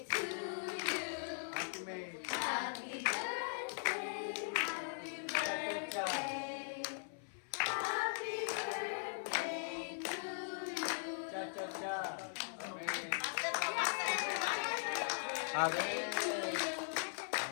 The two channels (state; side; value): silent; right; 51 dB below the other